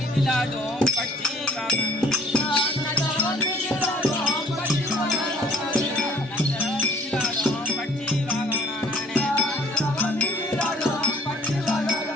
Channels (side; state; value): both; normal; correlation 0.56